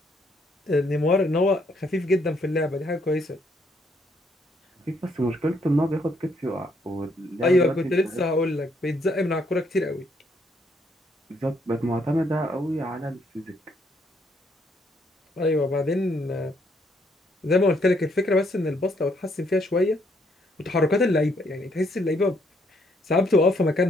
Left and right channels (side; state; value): both; normal; correlation 0.71